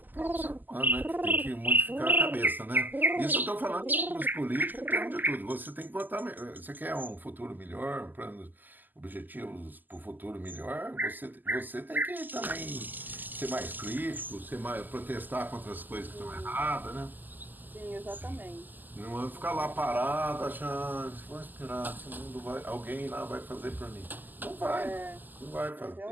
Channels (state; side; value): late; left; 0.086 ms